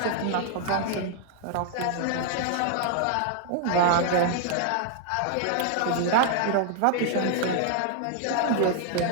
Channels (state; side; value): different; both; correlation 0.00